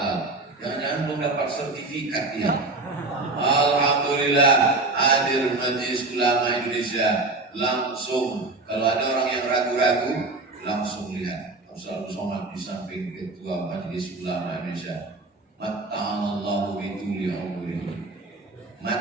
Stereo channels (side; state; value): left; quieter; 3.3 dB